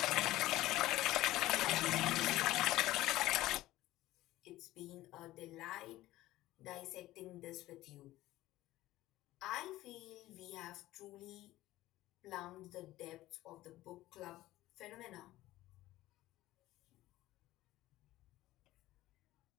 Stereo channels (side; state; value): right; quieter; 16.3 dB